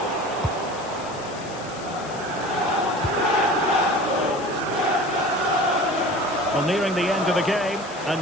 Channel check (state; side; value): noise; left; hiss, 17 dB below the sound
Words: Well, nearing the end of the game, and